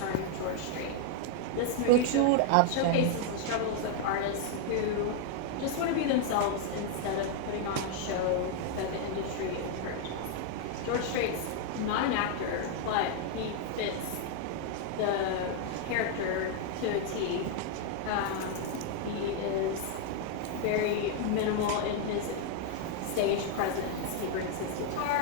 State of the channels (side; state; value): both; different; correlation 0.00